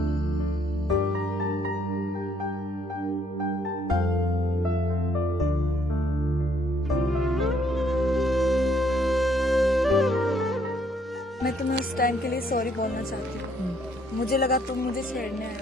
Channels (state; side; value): normal; both; correlation 0.68